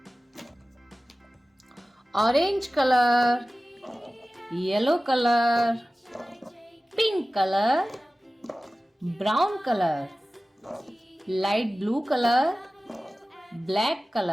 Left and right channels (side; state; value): both; normal; correlation 0.97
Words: Orange color, yellow color, pink color, brown color, light blue color, black